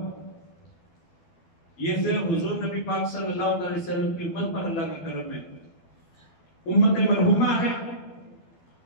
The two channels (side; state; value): right; late; 12 ms